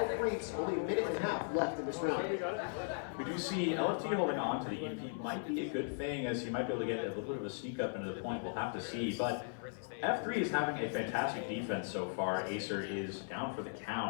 Reeps. Only a minute and a half left in this round. We do see LFT holding on to the EMP might be a good thing, as he might be able to get a little bit of a sneak up into the point. We'll have to see. But F3 is having a fantastic defense so far. AESIR is down for the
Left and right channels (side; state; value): right; silent; 53 dB below the other